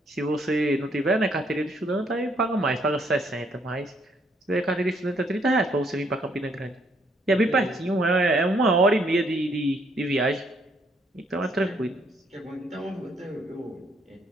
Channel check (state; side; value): normal; both; correlation 0.69